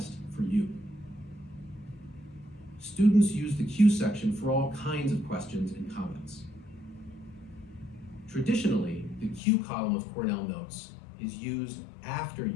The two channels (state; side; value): drops out; right; at 9.4 s